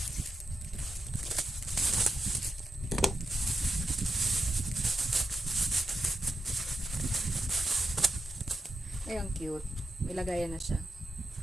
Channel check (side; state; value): both; normal; correlation 0.88